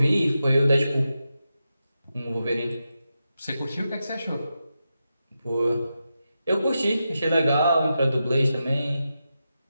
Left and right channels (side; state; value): both; inverted; correlation -0.89